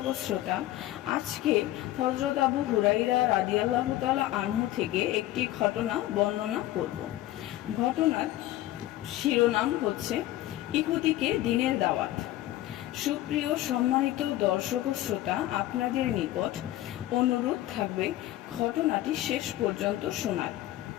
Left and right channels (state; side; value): quieter; right; 15.1 dB